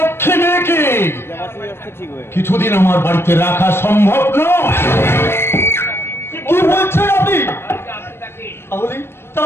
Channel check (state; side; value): late; right; 0.12 ms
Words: মেয়েকে কিছুদিন আমার বাড়িতে রাখা সম্ভব নয়। কি বলছেন আপনি?